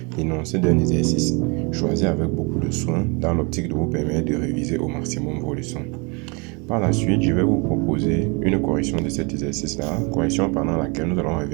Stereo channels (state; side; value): quieter; left; 30.8 dB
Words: l'énoncé d'un exercice choisi avec beaucoup de soin dans l'optique de vous permettre de réviser au maximum vos leçons. Par la suite, je vais vous proposer une correction de cet exercice-là, correction pendant laquelle nous allons